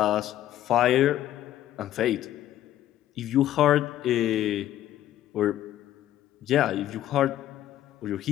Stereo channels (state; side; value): quieter; right; 12.8 dB